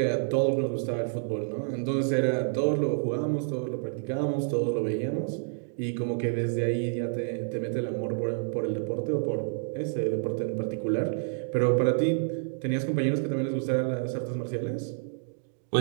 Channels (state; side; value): silent; left; digital silence